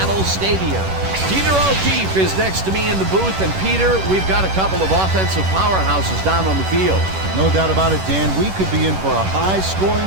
Stadium. Peter O'Keefe is next to me in the booth, and Peter, we've got a couple of offensive powerhouses down on the field. No doubt about it, Dan. We could be in for a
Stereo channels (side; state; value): left; late; 11 ms